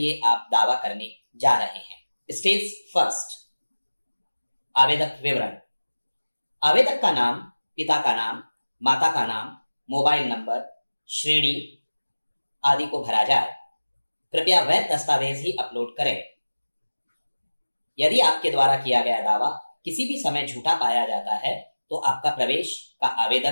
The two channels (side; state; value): both; inverted; correlation -1.00